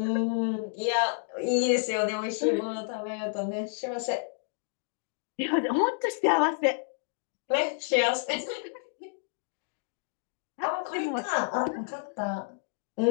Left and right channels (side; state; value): right; silent; digital silence